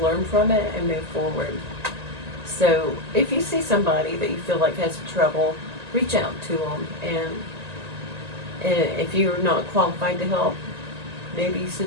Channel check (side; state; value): left; late; 1.9 ms